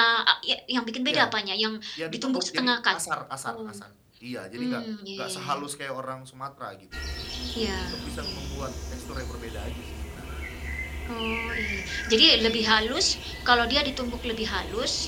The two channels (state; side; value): identical; both; correlation 1.00